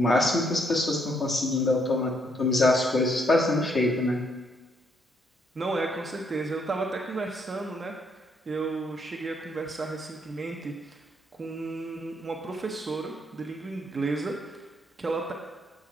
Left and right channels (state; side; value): normal; both; correlation 0.72